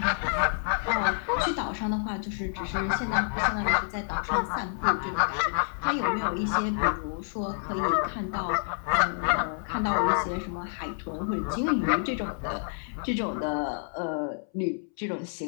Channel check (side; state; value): right; silent; 59 dB below the other